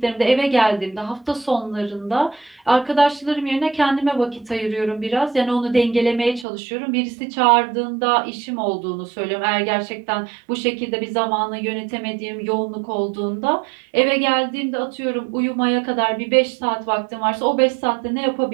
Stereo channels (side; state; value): left; drops out; at 6.5 s